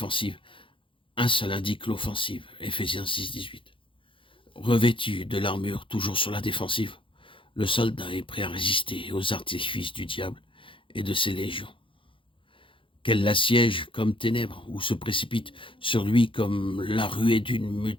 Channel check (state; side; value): late; right; 0.25 ms